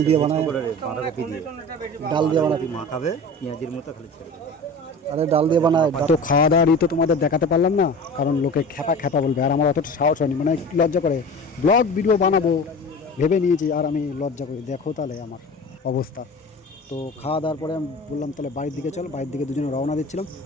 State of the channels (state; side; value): normal; both; correlation 0.36